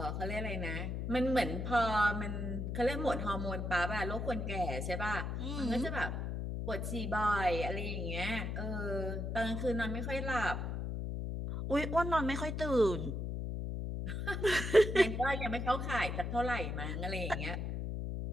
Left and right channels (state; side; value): noise; left; hum, 3 dB below the sound